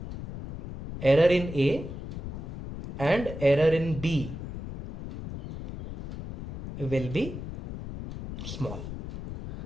error in a and error in b will be small.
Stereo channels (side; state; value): left; noise; rumble, 9 dB below the sound